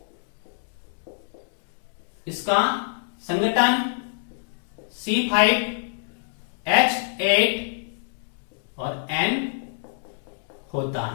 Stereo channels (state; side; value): silent; right; digital silence